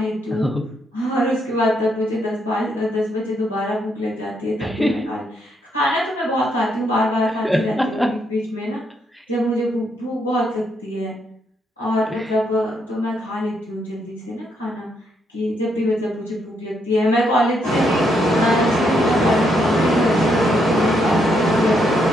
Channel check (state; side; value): normal; both; correlation 0.76